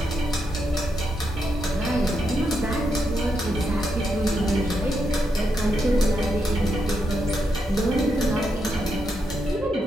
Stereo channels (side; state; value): both; normal; correlation 0.82